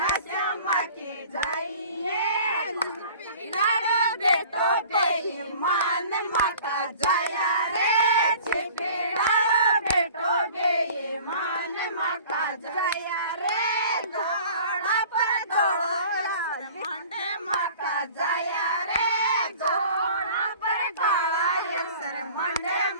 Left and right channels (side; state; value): both; inverted; correlation -0.46